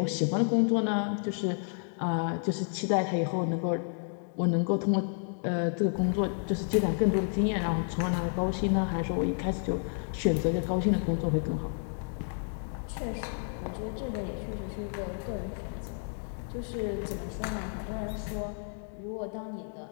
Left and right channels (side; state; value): right; silent; 57 dB below the other